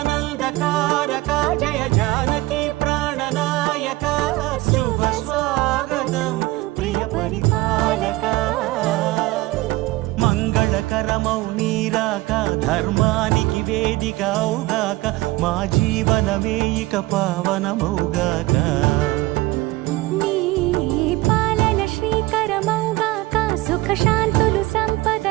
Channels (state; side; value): quieter; left; 19.3 dB